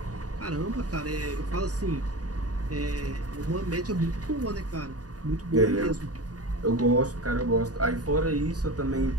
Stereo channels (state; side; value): late; left; 0.68 ms